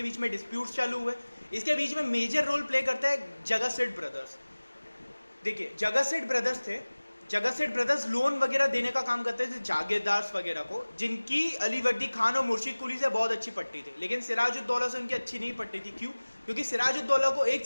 बीच में डिस्प्यूट्स चालू हुए. इसके बीच में मेजर रोल प्ले करता है जगत सेठ ब्रदर्स. देखिए, जगत सेठ ब्रदर्स थे. जगत सेठ ब्रदर्स लोन वगैरह देने का काम करते थे जागीरदार्स वगैरह को, जिनकी अली वर्दी खान और मुर्शिद कुली से बहुत अच्छी पट्टी थी. लेकिन सिराजुद्दौला से उनकी अच्छी नहीं पट्टी थी. क्यों? क्योंकि सिराजुद्दौला को एक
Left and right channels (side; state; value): both; inverted; correlation -1.00